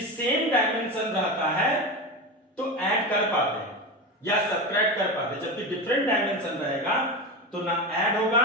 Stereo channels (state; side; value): normal; both; correlation 0.21